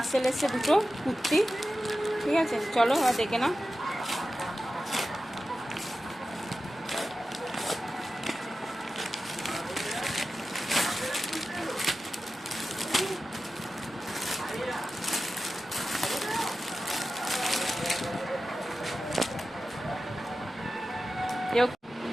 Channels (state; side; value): normal; both; correlation 0.93